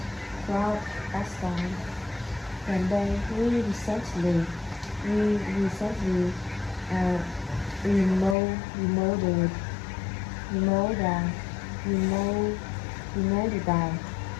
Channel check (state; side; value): drops out; right; at 8.3 s